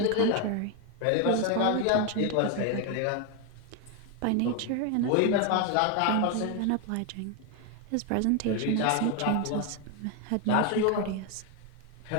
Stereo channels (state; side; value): different; both; correlation 0.01